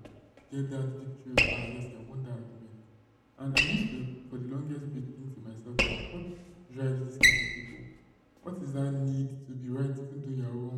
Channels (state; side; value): identical; both; correlation 1.00